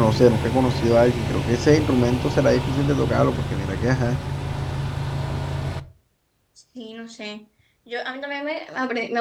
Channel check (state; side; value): identical; both; correlation 1.00